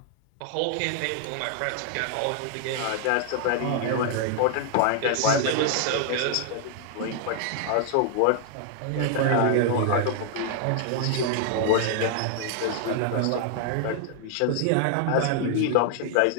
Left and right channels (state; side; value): different; both; correlation 0.00